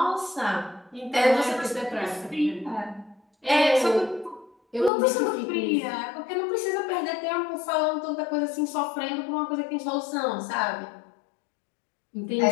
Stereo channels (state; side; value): drops out; right; at 4.9 s